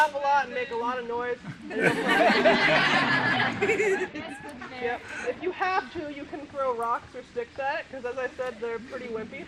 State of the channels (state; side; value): identical; both; correlation 1.00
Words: a lot and make a lot of noise. And yep. If you have to, you can throw rocks or sticks at it, because as I said, they're pretty wimpy.